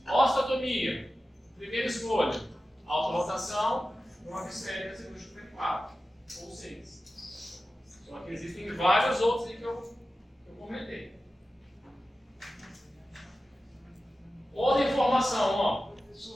Osteotomia. Primeira escolha. Alta rotação, brocas esféricas e cirúrgica 4 ou 6. Só que existem vários outros aí que eu comentei. Outra informação, ó.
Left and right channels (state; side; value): normal; both; correlation 0.93